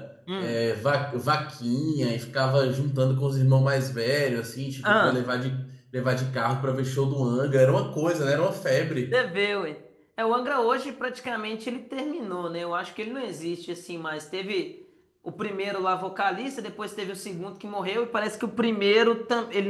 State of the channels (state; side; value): identical; both; correlation 1.00